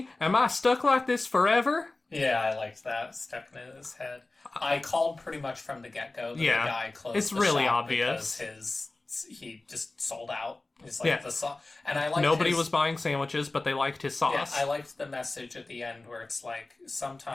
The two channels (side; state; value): right; quieter; 3.1 dB